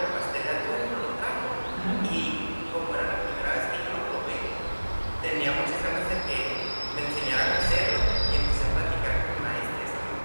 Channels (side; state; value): both; inverted; correlation -1.00